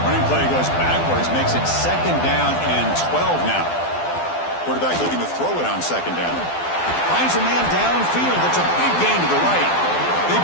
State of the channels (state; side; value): late; right; 12 ms